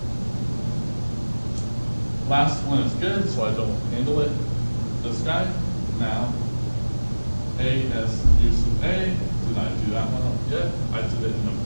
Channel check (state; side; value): inverted; both; correlation -1.00